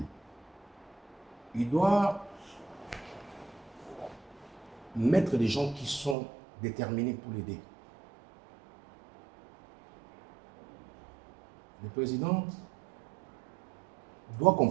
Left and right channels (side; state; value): left; drops out; at 6.2 s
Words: Il doit mettre des gens qui sont déterminés pour l'aider. Le président doit